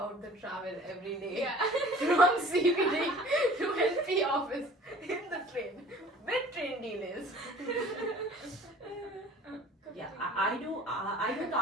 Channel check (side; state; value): both; normal; correlation 0.48